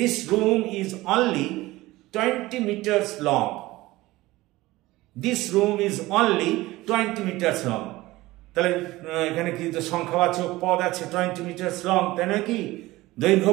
20 meters long, this room is only 20 meters long, তাহলে এখানে কি তো সংখ্যাবাচক পদ আছে 20 meters long, তাই নয় কি দৈর্ঘ্য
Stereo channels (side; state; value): left; quieter; 18.7 dB